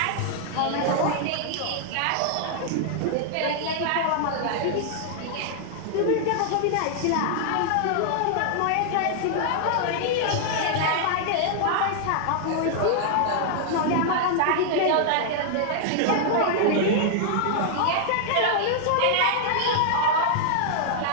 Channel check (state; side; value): different; both; correlation -0.01